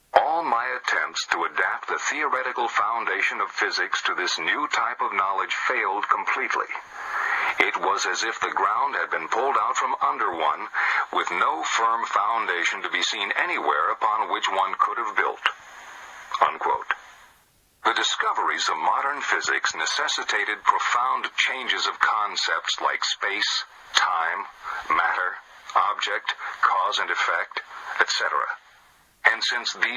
"All my attempts to adapt the theoretical foundation of physics to this new type of knowledge failed completely. It was as if the ground had been pulled out from under one, with no firm foundation to be seen anywhere upon which one could have built." Unquote. The discoveries of modern physics necessitated profound changes of concepts like space, time, matter, object, cause and effect, etc. And since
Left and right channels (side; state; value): both; identical; correlation 1.00